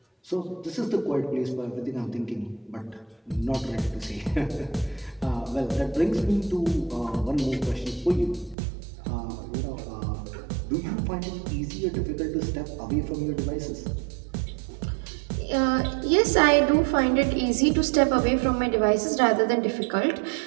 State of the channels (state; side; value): drops out; left; at 8.6 s